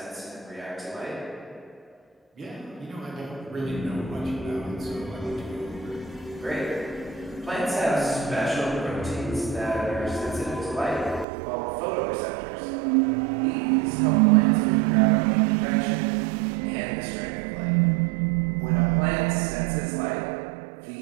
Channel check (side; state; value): left; drops out; at 11.2 s